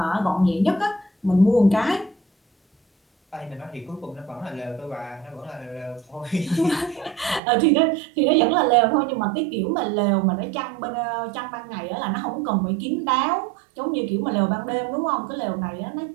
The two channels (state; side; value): drops out; left; at 7.4 s